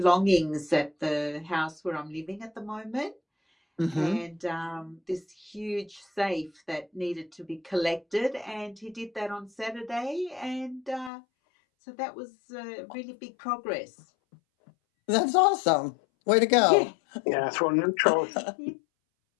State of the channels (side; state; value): right; drops out; at 11.1 s